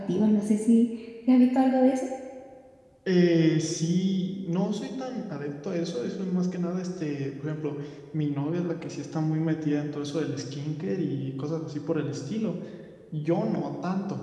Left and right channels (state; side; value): identical; both; correlation 1.00